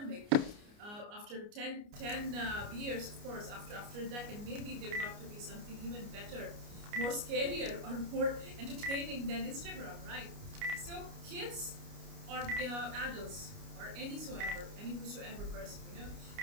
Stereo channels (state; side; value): late; left; 29 ms